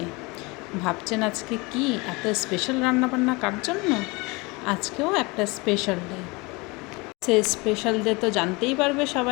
ভাবছেন আজকে কি এত স্পেশাল রান্নাবান্না কার জন্য? আজকেও একটা স্পেশাল ডে। সেই স্পেশাল ডে তো জানতেই পারবে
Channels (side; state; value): right; quieter; 25.8 dB